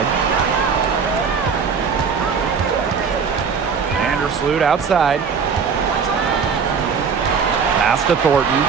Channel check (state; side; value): quieter; left; 6.0 dB